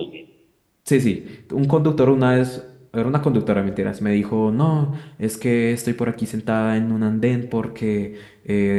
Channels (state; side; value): identical; both; correlation 1.00